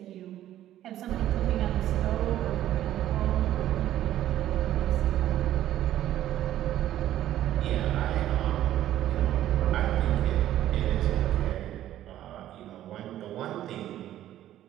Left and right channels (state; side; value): quieter; left; 12.7 dB